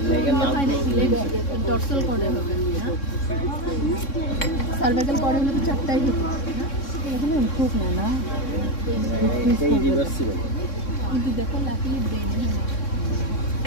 লেগের নাম ডর্সাল করে হবে না সার্ভাইকাল করে হলে তো চারটাই হতো এগুলো ইমপ্রুভ না না এই রিভার্সিবল কিন্তু দেখো লাকি ব্রেন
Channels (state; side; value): late; right; 3.6 ms